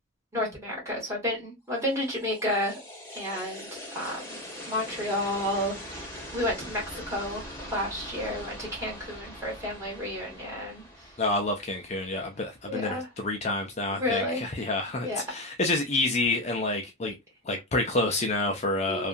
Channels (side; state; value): both; normal; correlation 0.13